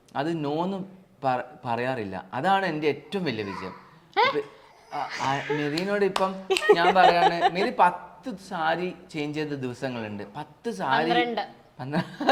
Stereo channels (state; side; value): identical; both; correlation 1.00